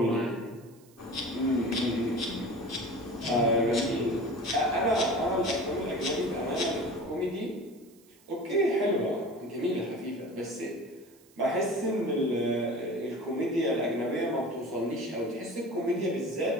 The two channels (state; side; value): noise; right; hiss, 29 dB below the sound